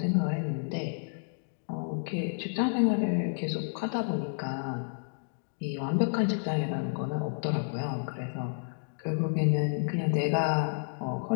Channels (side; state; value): right; silent; digital silence